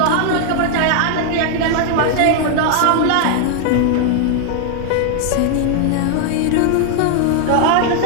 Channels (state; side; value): different; both; correlation 0.00